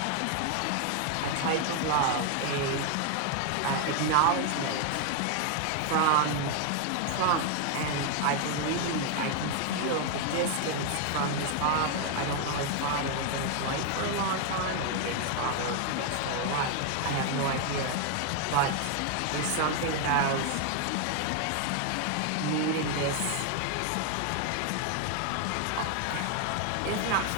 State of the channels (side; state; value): both; different; correlation 0.00